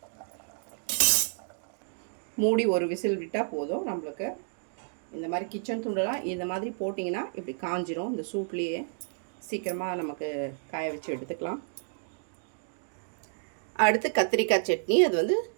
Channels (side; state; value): left; silent; digital silence